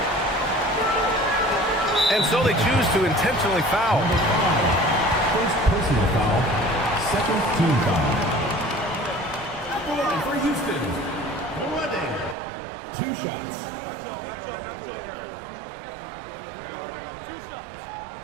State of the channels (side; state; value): left; drops out; at 12.4 s